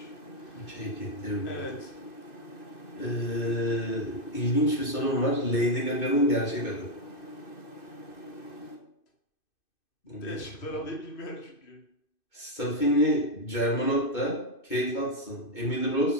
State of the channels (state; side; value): late; right; 2.6 ms